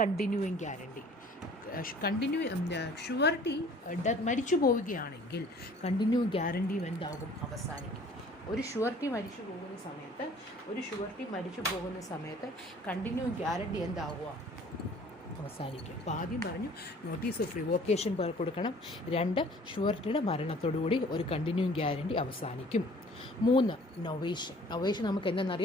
guarantee. ഷ്യൂരിറ്റി മരിച്ചു പോവുകയാണെങ്കിൽ കണ്ടിന്യൂ ഗ്യാരണ്ടിയും എന്താകും? അവസാനിക്കും. ഒരു ഷ്യൂരിറ്റി മരിച്ചു പോകുന്ന സമയത്ത് കണ്ടിന്യൂ ഗ്യാരണ്ടി എന്താകുക? അവസാനിക്കും. അപ്പോൾ ആദ്യം പറഞ്ഞു നോട്ടീസ് ഓഫ് റിവോക്കേഷൻ കൊടുക്കണം. 2, ഷ്യൂരിറ്റിയുടെ മരണത്തോടുകൂടി ഒരു കണ്ടിന്യൂയിങ് ഗ്യാരണ്ടി അവസാനിക്കും. 3, നൊവേഷൻ നമുക്ക്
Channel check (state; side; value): normal; both; correlation 0.52